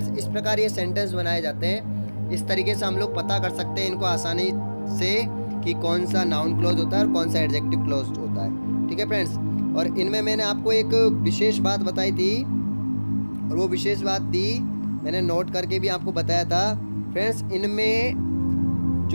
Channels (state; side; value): inverted; both; correlation -1.00